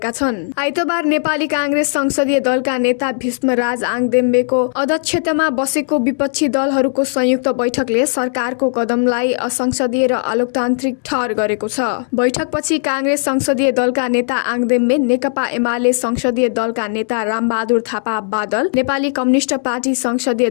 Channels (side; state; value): right; silent; digital silence